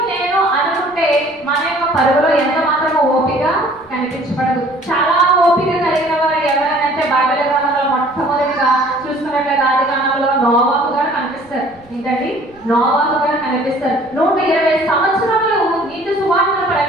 నేను అనుకుంటే మన యొక్క పరుగులో ఎంత మాత్రమో ఓపిక కనిపించబడదు. చాలా ఓపిక కలిగిన వారు ఎవరైనా బైబిల్ గ్రంథంలో మొట్టమొదటిగా చూసుకున్నట్లయితే ఆదికాండంలో నోవాహు గారు కనిపిస్తారు. ఏంటండి? నోవాహు గారు కనిపిస్తారు. 120 సంవత్సరాలు నీతి సువార్తను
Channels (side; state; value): right; noise; rumble, 29 dB below the sound